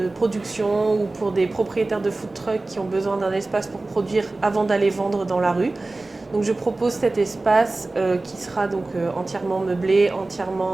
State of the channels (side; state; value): left; quieter; 3.1 dB